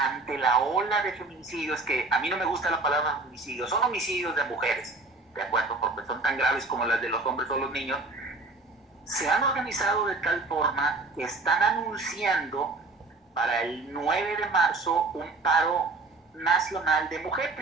la ola de feminicidios, que a mí no me gusta la palabra feminicidios, son homicidios de mujeres, de acuerdo, porque son tan graves como las de los hombres o los niños, se han organizado de tal forma que están anunciando para el 9 de marzo un paro nacional de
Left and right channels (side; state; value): left; quieter; 3.3 dB